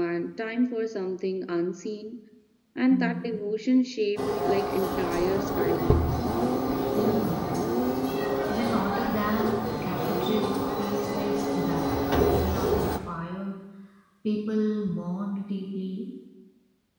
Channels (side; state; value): both; identical; correlation 1.00